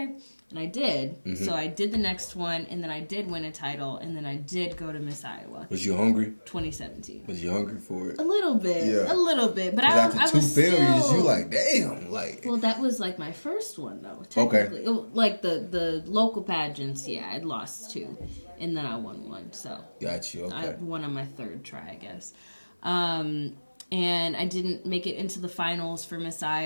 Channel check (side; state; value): both; inverted; correlation -1.00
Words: And I did. Mm-hmm. So I did the next one, and then I did win a title, and then I did go to Miss Iowa. Was you hungry? 2017. Was you hungry for it? A little bit. Yeah. A little bit. But Because I after was two failures, still... you like, damn. Like, Well, that was like my first one, though, technically. Okay. Like the local pageants, yeah, I'd lost 2. And then I won 1, so... got you. Okay. I won on my 3rd try, I guess. And I didn't make it into the finals for Miss